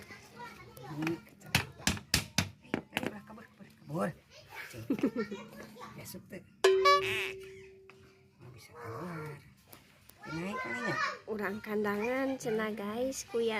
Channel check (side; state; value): both; identical; correlation 1.00